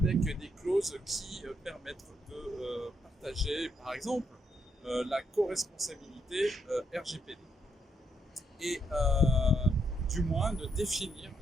des clauses qui permettent de partager, par exemple, la co-responsabilité RGPD et du moins de définir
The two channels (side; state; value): both; normal; correlation 0.76